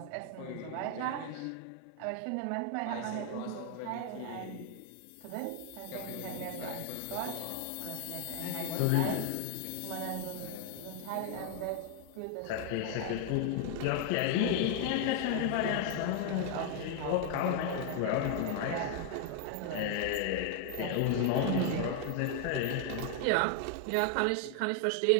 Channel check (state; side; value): different; both; correlation 0.00